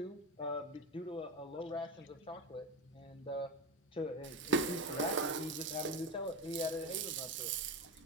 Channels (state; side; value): normal; both; correlation 0.19